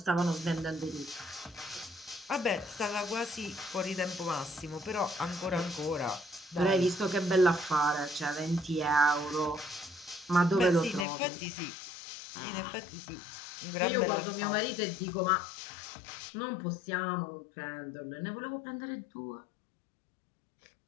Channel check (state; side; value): drops out; right; at 11.1 s